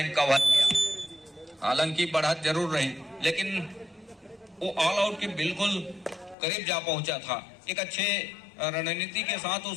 कवर किया। हालांकि बढ़त जरूर रही, लेकिन वो ऑल आउट के बिल्कुल करीब जा पहुंचा था। एक अच्छे रणनीति के साथ उस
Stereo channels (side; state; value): right; drops out; at 6.4 s